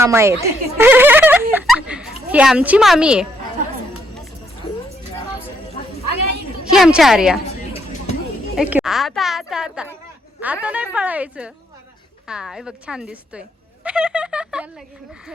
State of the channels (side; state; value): both; normal; correlation 0.73